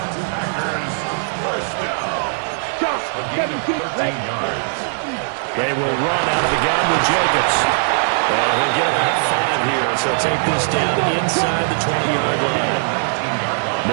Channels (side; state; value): left; silent; digital silence